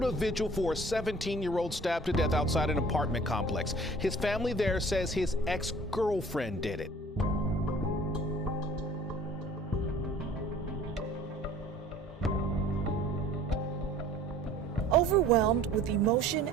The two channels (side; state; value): both; normal; correlation 0.50